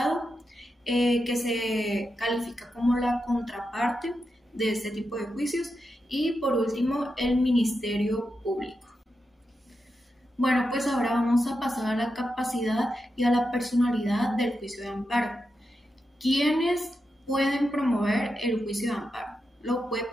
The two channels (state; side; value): normal; both; correlation 0.88